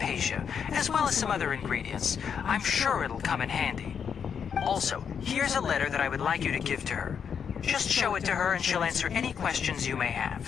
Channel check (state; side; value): quieter; right; 7.2 dB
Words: as well as some other ingredients. I'm sure it'll come in handy. Also, here's a letter that I would like you to give to her. Just show it to her and she'll answer any questions you may